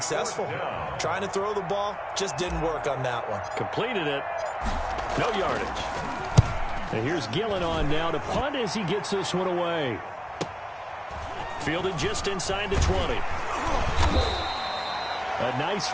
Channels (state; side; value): identical; both; correlation 1.00